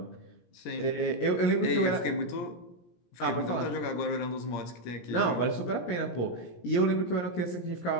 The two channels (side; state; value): right; late; 17 ms